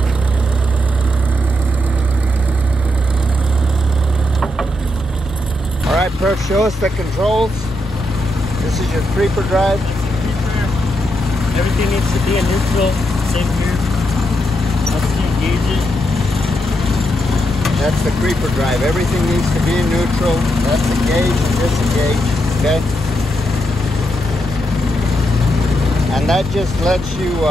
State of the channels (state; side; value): noise; right; rumble, 15 dB below the sound